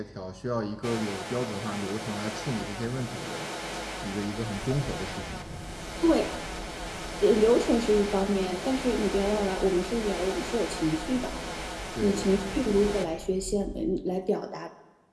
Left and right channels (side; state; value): both; identical; correlation 1.00